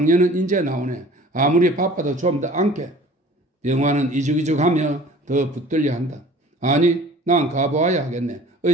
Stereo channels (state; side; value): normal; both; correlation 0.46